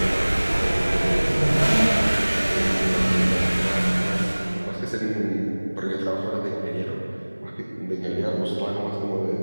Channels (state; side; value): inverted; both; correlation -1.00